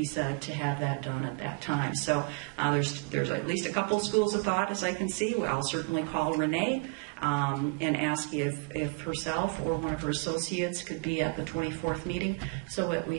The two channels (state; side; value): quieter; left; 30.9 dB